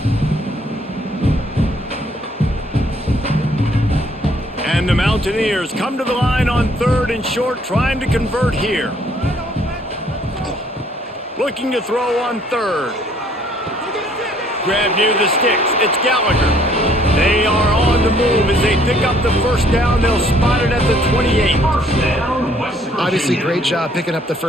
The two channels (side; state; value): both; normal; correlation 0.63